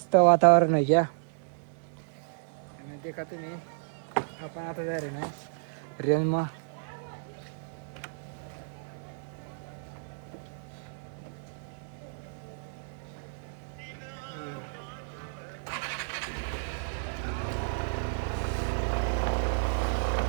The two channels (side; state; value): left; silent; digital silence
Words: वातावरण आहे क्या. आणि देखा तुम्ही आपण आता जा रे ना रेंज मा.